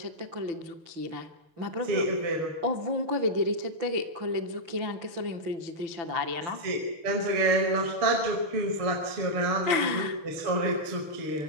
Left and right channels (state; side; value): late; left; 6.0 ms